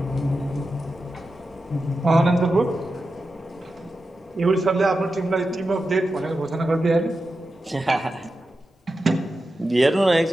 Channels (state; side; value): normal; both; correlation 0.91